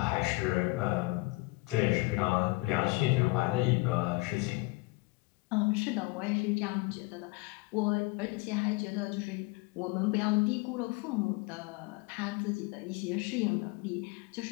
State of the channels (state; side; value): quieter; right; 24.2 dB